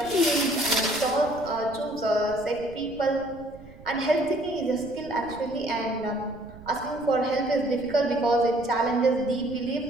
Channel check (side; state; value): right; noise; rumble, 20 dB below the sound